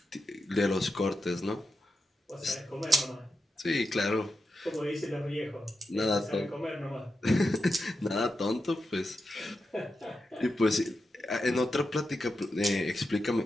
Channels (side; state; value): both; normal; correlation 0.88